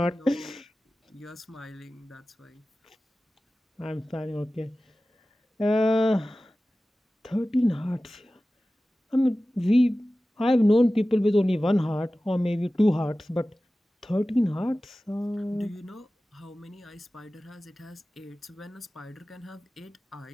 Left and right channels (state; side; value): normal; both; correlation 0.96